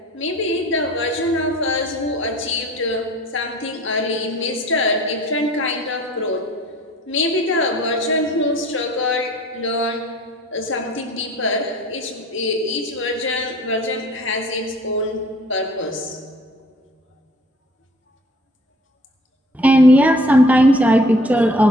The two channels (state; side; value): normal; both; correlation 0.50